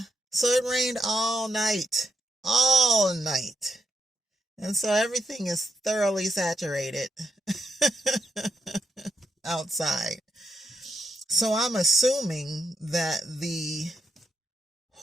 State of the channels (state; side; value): normal; both; correlation 0.81